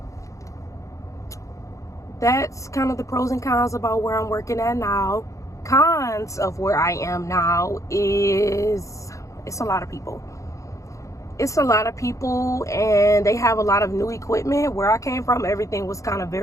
that's kind of the pros and cons about where I'm working at now. Cons of where I am now is it's a lot of people. It's a lot of people, and they have a lot of new equipment. Where I came from, everything was kind of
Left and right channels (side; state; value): right; late; 0.15 ms